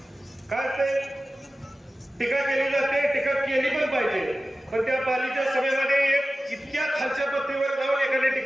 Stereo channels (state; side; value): normal; both; correlation 0.95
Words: काय ते टीका केली जाते, टीका केली पण पाहिजे. पण त्या पालीच्या सभेमध्ये एक इतक्या खालच्या पत्तीवर जाऊन एकाने